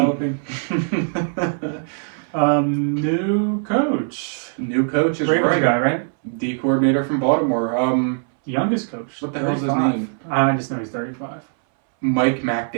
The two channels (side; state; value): left; silent; 62 dB below the other